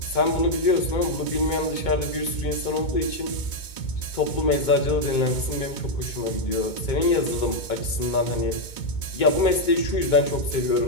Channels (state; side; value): late; right; 2.2 ms